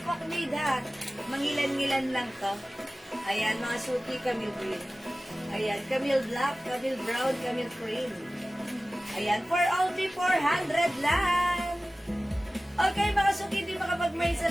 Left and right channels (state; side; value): normal; both; correlation 0.96